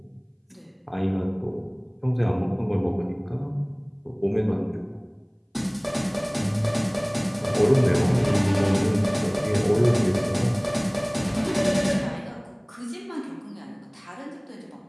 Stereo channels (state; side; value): identical; both; correlation 1.00